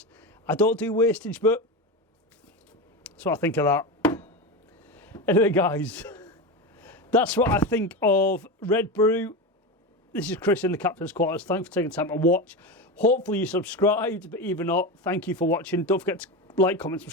I don't do wastage, but that's what I think of that. Anyway, guys, that's what I think of Red Brew. This is Chris in the Captain's Quarters. Thanks for taking time to watch. Hopefully you subscribed, but even not, thank you for watching. Don't forget to like, comment,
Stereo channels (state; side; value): normal; both; correlation 0.20